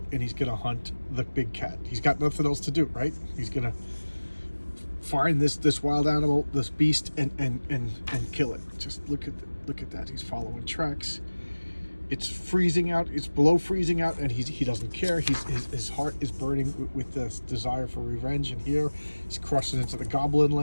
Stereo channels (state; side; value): inverted; both; correlation -1.00